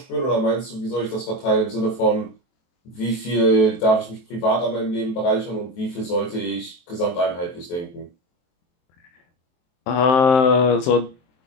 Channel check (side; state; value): right; late; 23 ms